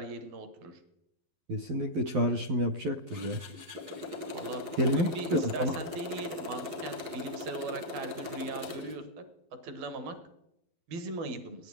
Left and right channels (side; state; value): left; late; 12 ms